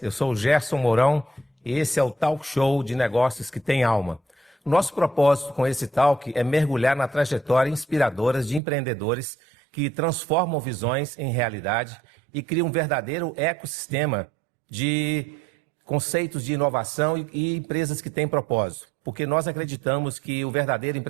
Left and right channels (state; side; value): drops out; left; at 8.6 s